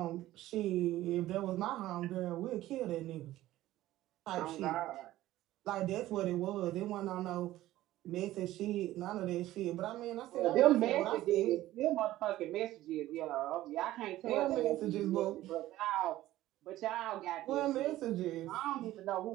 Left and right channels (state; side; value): quieter; left; 15.2 dB